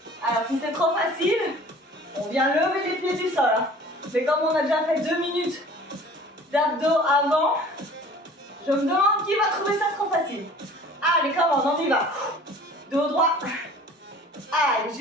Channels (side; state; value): both; normal; correlation 0.47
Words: Alors si c'est trop facile, on vient lever les pieds du sol. Hein. Mais comme on a déjà fait 2 minutes d'abdos avant, je me demande qui va trouver ça trop facile. Allez, comment on y va. Dos droit. Allez,